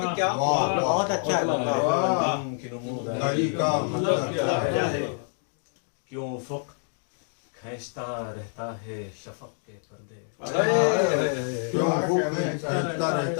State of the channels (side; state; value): right; silent; 60 dB below the other